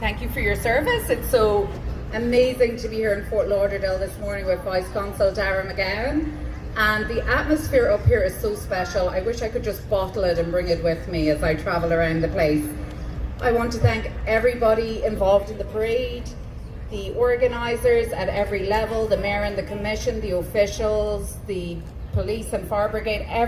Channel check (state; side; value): identical; both; correlation 1.00